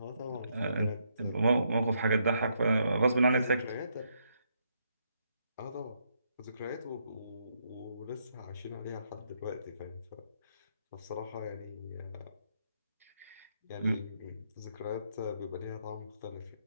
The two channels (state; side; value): inverted; both; correlation -0.76